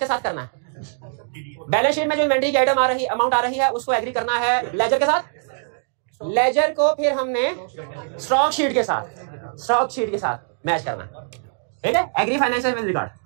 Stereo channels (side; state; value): left; silent; digital silence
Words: साथ करना है। बैलेंस शीट में जो इन्वेंट्री की आइटम आ रही, अमाउंट आ रही है, उसको एग्री करना है लेजर के साथ, लेजर को फिर हमने स्टॉक शीट के साथ मैच करना है, ठीक है। Agree financial with record.